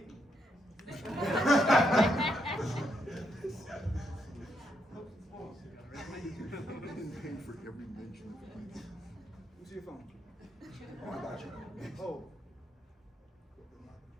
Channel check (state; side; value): normal; both; correlation 0.78